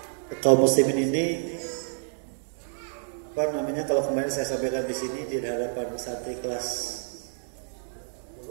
kaum muslimin ini, apa namanya, kalau kemarin saya sampaikan di sini di hadapan santri kelas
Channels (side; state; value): left; silent; 59 dB below the other